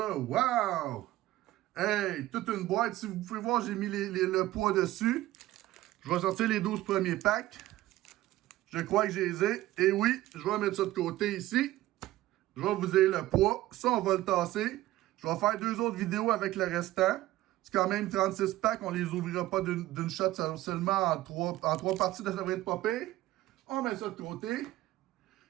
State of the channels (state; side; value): quieter; left; 16.0 dB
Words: Wow! Hey, toute une boîte. Si vous pouvez voir, j'ai mis le poids dessus. Je vais sortir les 12 premiers packs. Je crois que je les ai. Et oui, je vais mettre ça de côté ici. Je vais vous dire le poids. Ça, on va le tasser. Je vais faire 2 autres vidéos avec le restant. C'est quand même 36 packs. On les ouvrira pas d'une shot seulement en 3 parties. Ça devrait être pas pire. On met ça de côté.